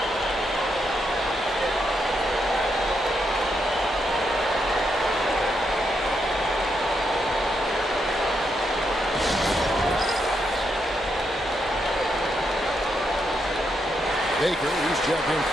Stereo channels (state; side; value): normal; both; correlation 0.80